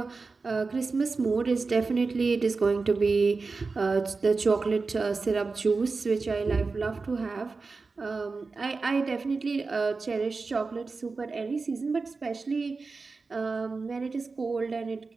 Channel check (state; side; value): quieter; left; 4.2 dB